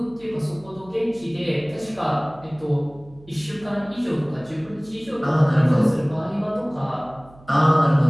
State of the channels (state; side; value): noise; right; hum, 24 dB below the sound